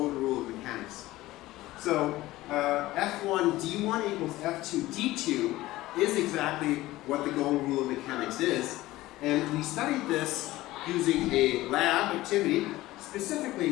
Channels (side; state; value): right; quieter; 17.3 dB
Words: rule of mechanics. So F1 D1 equals F2 D2 is exactly what the golden rule of mechanics is. And we studied this using a lab activity. Specifically,